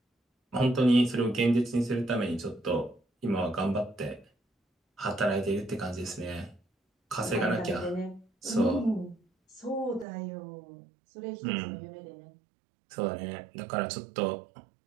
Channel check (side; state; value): left; drops out; at 10.1 s